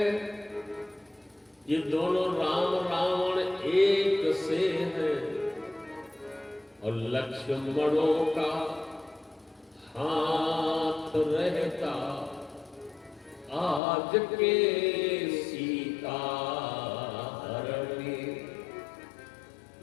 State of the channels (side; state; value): right; drops out; at 13.8 s